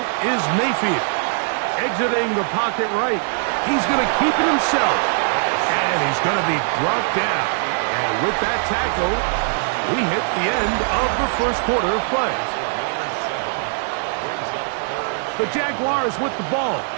is Mayfield. Exiting the pocket right. He's going to keep it himself. And he's going to be brought down. And with that tackle, we hit the end of the first quarter of play. The Jaguars with the ball.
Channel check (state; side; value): silent; left; 59 dB below the other